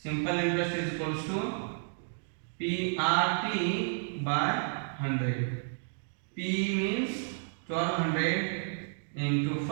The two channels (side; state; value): left; silent; 57 dB below the other